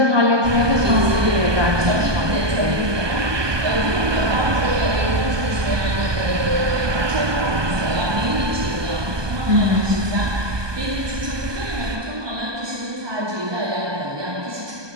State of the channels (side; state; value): left; late; 1.2 ms